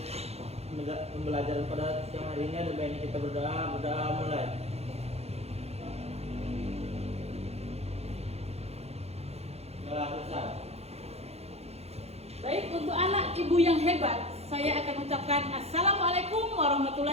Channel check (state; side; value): late; left; 0.30 ms